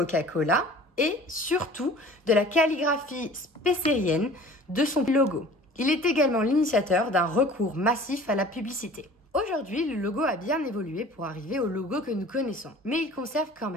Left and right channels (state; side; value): normal; both; correlation 0.46